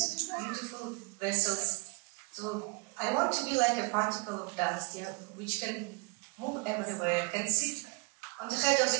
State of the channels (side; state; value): left; quieter; 30.4 dB